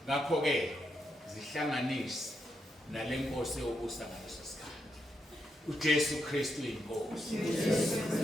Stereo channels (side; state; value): both; normal; correlation 0.82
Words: Ngakho ke zihlanganise nale nkosi yobusa ngaleso sikhathi. uJesu Kristu inkosi.